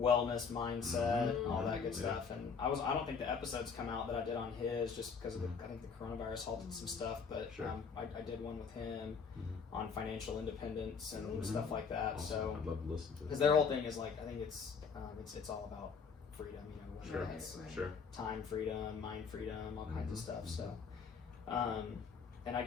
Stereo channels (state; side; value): quieter; right; 5.8 dB